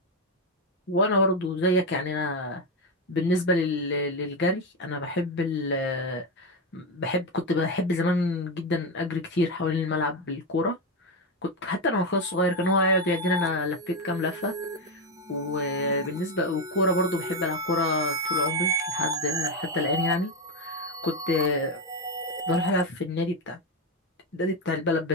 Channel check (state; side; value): normal; both; correlation 0.10